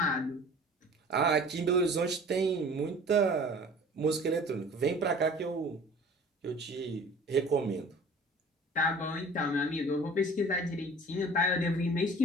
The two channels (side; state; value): both; normal; correlation 0.46